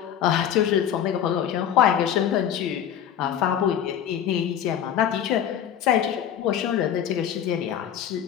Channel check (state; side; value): quieter; right; 9.5 dB